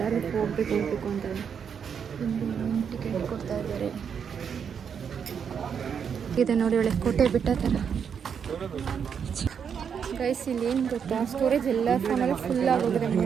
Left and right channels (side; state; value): left; quieter; 7.2 dB